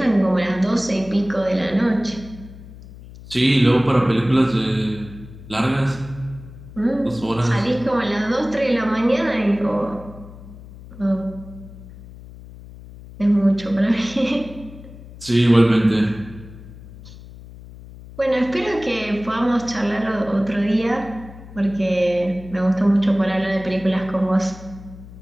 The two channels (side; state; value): left; noise; hum, 17 dB below the sound